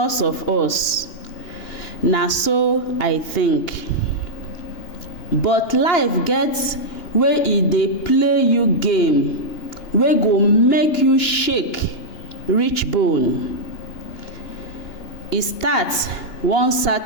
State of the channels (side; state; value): right; late; 2.9 ms